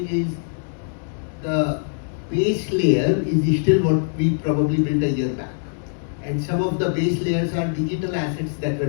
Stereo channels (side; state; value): right; silent; 64 dB below the other